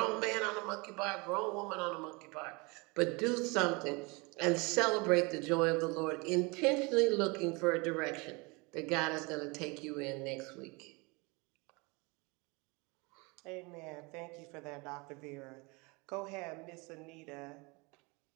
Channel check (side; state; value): left; quieter; 27.5 dB